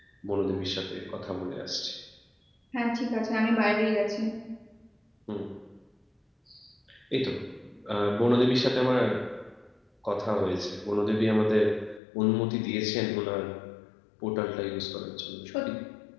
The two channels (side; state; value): right; drops out; at 12.0 s